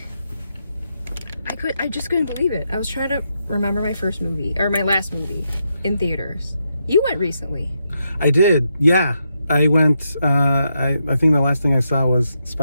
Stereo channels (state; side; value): inverted; both; correlation -0.82